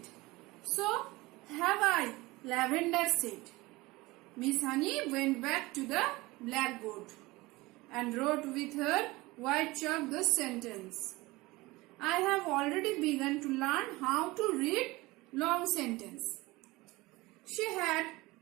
So have I, Lavender said. Miss Honey went back to the blackboard and wrote with her white chalk the sentence. I have already begun to learn how to read long sentence. She had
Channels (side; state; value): left; quieter; 21.1 dB